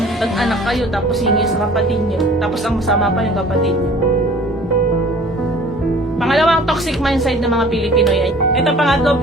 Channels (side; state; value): both; normal; correlation 0.49